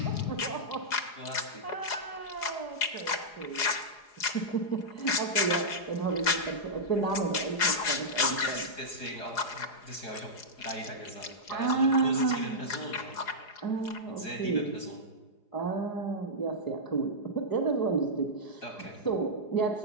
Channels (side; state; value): right; late; 4.8 ms